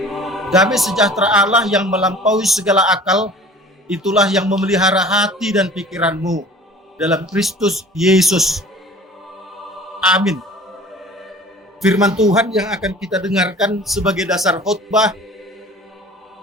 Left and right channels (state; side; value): normal; both; correlation 0.45